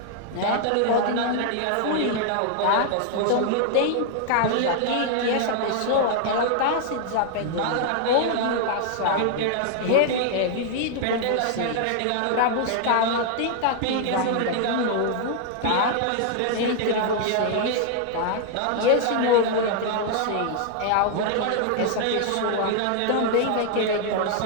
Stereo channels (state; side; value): different; both; correlation 0.00